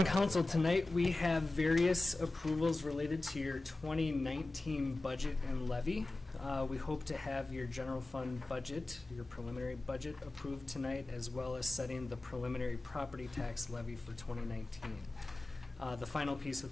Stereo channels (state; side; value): normal; both; correlation 0.98